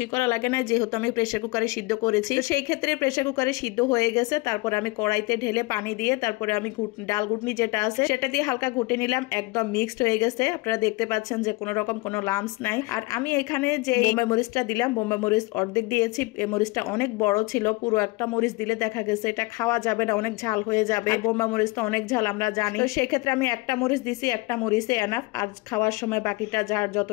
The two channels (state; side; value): quieter; right; 23.2 dB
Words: করা লাগে না, যেহেতু আমি প্রেসার কুকারে সিদ্ধ করেছি। তো সেই ক্ষেত্রে প্রেসার কুকারে সিদ্ধ হয়ে গেছে, তারপরে আমি কড়াইতে ঢেলে পানি দিয়ে তারপরে আমি ডাল ঘুটনি যেটা আছে সেটা দিয়ে হালকা ঘুটে নিলাম। একদম মিক্সড হয়ে গেছে, আপনারা দেখতে পাচ্ছেন যে কোনো রকম কোনো লাম্পস নাই। আর আমি এখানে যে বোম্বাই মরিচটা দিলাম, বোম্বাই মরিচ অর্ধেক দিয়েছি। এই মরিচটা অনেক বড় ছিল, পুরো একটা মরিচ দিলে দেখা গেছে এটা খাওয়া যাবে না, অনেক ঝাল হয়ে যাবে। বোম্বাই মরিচ তো অনেক ঝাল আমরা জানি। তো সেক্ষেত্রে আমি একটা মরিচ দিছি, একটা মরিচে এনাফ। আর খাওয়ার সময় বাকিটা যার